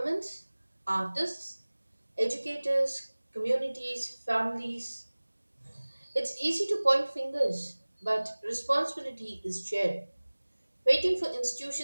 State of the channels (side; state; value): both; inverted; correlation -1.00